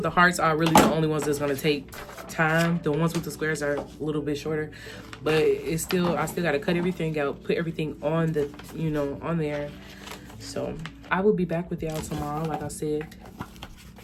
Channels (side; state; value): both; identical; correlation 1.00